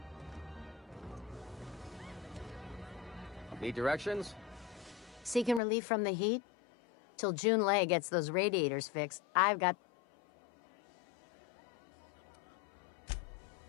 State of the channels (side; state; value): right; drops out; at 5.6 s